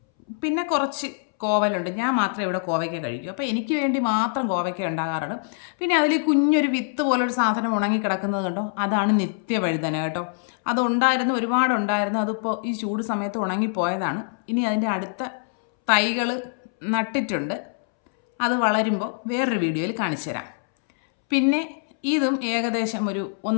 പിന്നെ കുറച്ച് കോവലുണ്ട്. ഞാൻ മാത്രമേ ഇവിടെ കോവയ്ക്ക കഴിക്കൂ, അപ്പോൾ എനിക്ക് വേണ്ടി മാത്രം കോവയ്ക്ക ഉണ്ടാകാറുണ്ട്. പിന്നെ അതിൽ കുഞ്ഞൊരു വിത്ത് പോലൊരു സാധനം ഉണങ്ങി കിടക്കുന്നത് കണ്ടോ, അതാണ് നിത്യവഴുതന കേട്ടോ. അതുണ്ടായിരുന്നു, ഒരുപാടുണ്ടായിരുന്നു, അതിപ്പോൾ ഈ ചൂട് സമയത്ത് ഉണങ്ങിപ്പോയതാണ്. ഇനി അതിൻ്റെ അടുത്ത തൈകൾ നട്ടിട്ടുണ്ട്, അത് വളരുമ്പോൾ വേറൊരു വീഡിയോയിൽ കാണിച്ചു തരാം. പിന്നെ ഇതും ഏകദേശം ഒരു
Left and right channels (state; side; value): silent; right; 63 dB below the other